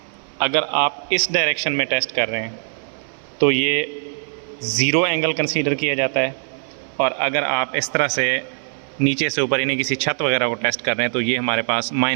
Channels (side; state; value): left; silent; 65 dB below the other